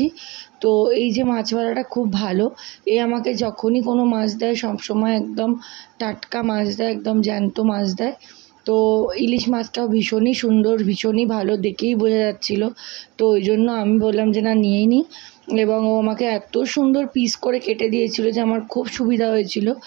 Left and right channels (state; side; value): quieter; left; 23.9 dB